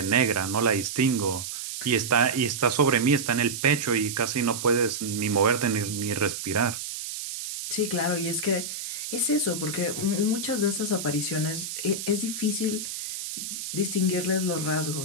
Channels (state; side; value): noise; right; hiss, 6 dB below the sound